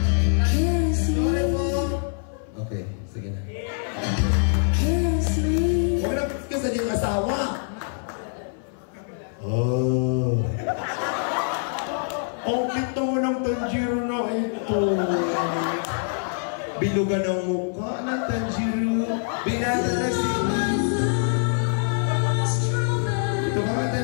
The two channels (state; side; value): silent; right; 59 dB below the other